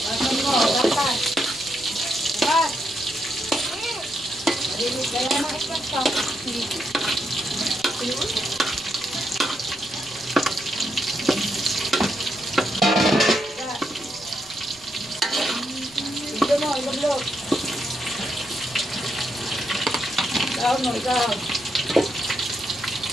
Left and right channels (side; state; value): right; noise; rumble, 26 dB below the sound